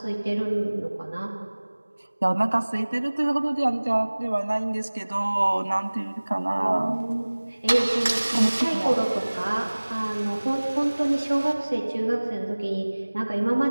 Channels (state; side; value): inverted; both; correlation -1.00